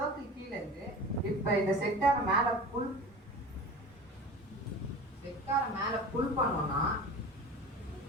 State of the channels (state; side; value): normal; both; correlation 0.36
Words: கீழே இருந்து இப்ப இந்த செக்டாரை மேல புல் பண்ணோம்னா